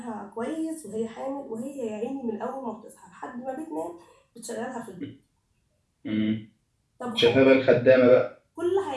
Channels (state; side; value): identical; both; correlation 1.00